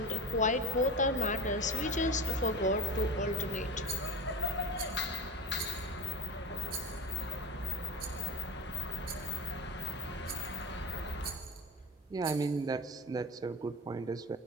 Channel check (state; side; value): normal; both; correlation 0.26